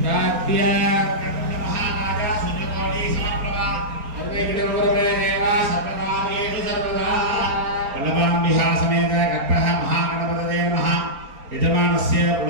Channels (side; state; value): left; late; 4.3 ms